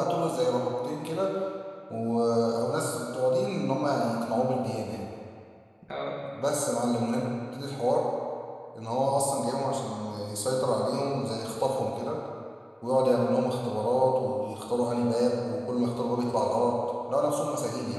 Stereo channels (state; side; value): identical; both; correlation 1.00